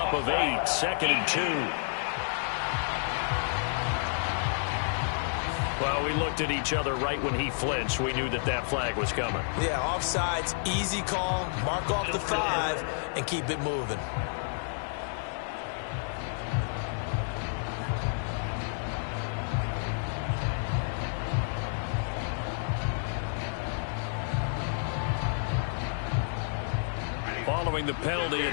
of 8. 2nd and 2. Well, we looked at each other right when he flinched. We knew that that flag was coming. Yeah, offsides, easy call. Mark off the 5 and keep it moving. Following the penalty,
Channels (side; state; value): right; silent; digital silence